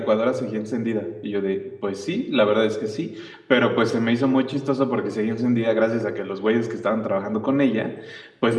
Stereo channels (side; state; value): both; identical; correlation 1.00